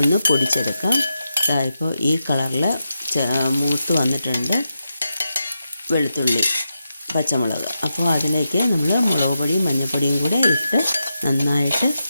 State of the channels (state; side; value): inverted; both; correlation -0.87